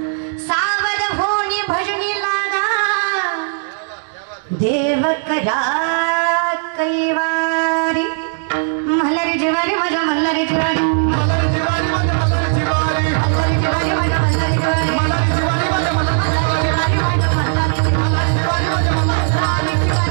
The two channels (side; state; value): left; silent; digital silence